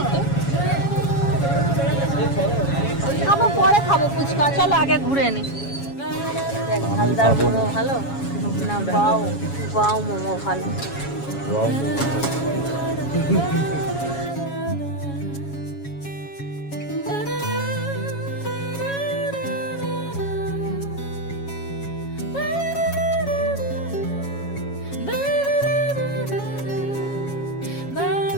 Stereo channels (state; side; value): late; right; 7.2 ms